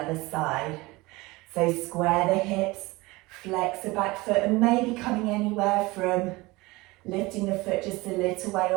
side. So square the hips, flex the back foot, and maybe coming anywhere from lifting the foot just a little way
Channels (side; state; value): left; quieter; 22.0 dB